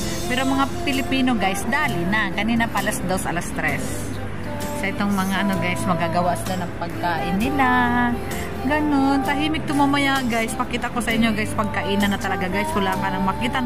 Pero mga Pilipino guys, dali na. Kanina pa alas 2, alas 3. So, itong mga ano guys, magagawa sila ng pagkain nila. Ganon. Tahimik tumamaya guys. Pakita ko sa inyo guys, pagkainan na talaga guys. Wala ka nang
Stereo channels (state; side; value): identical; both; correlation 1.00